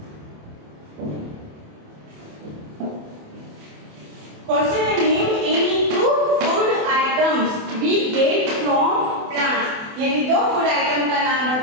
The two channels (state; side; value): late; left; 28 ms